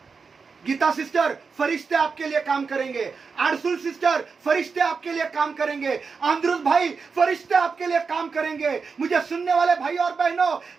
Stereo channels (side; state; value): left; quieter; 5.1 dB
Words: गीता सिस्टर, फरिश्ते आपके लिए काम करेंगे। आरसुल सिस्टर, फरिश्ते आपके लिए काम करेंगे। आंद्रुस भाई, फरिश्ते आपके लिए काम करेंगे। मुझे सुनने वाले भाई और